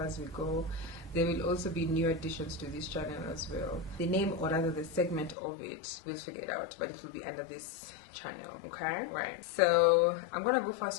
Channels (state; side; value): drops out; right; at 5.4 s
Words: we go. There will also be new additions to this channel as well. The name, or rather the segment of it, we'll figure it out, but it will be under this channel. Okay, right, so I'm gonna go